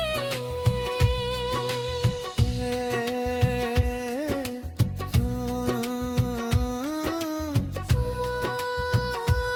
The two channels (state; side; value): identical; both; correlation 1.00